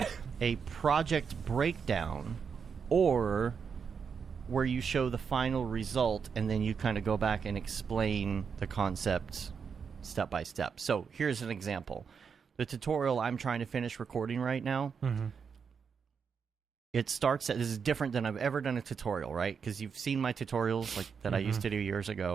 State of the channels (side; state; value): left; quieter; 6.3 dB